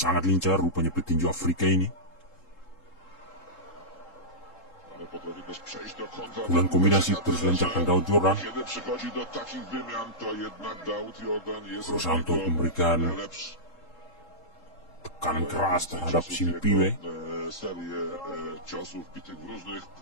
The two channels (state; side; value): late; right; 3.7 ms